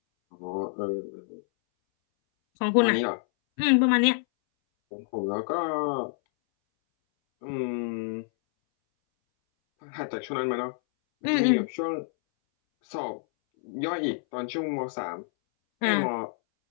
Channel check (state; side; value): silent; right; 60 dB below the other